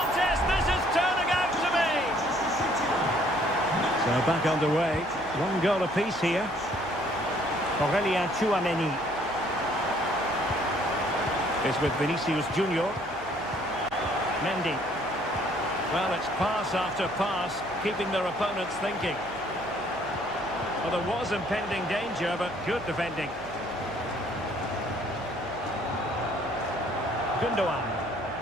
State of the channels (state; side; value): noise; right; hum, 21 dB below the sound